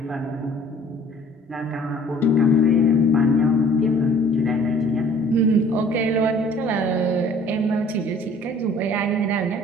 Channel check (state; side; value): normal; both; correlation 0.53